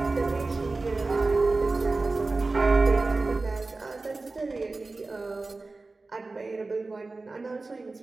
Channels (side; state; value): left; quieter; 3.5 dB